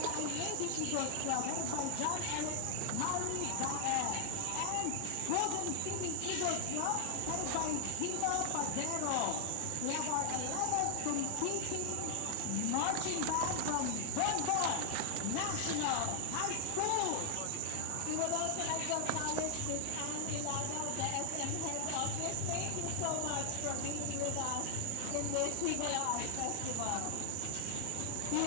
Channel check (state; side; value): different; both; correlation 0.00